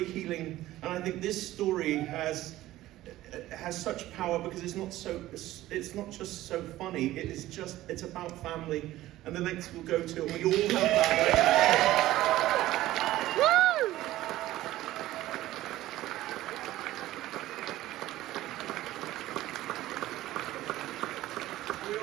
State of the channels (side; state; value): left; quieter; 15.5 dB